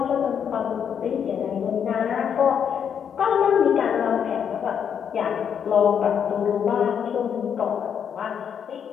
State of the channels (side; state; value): right; quieter; 7.9 dB